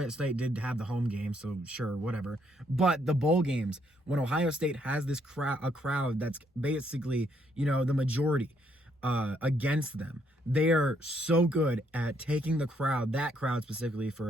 State did have the home game, so sure, whatever. But the bowl games, when Ohio State has this a crowd that's basically, the majority against them, they are so good at taking that crowd specifically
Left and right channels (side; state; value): both; normal; correlation 0.72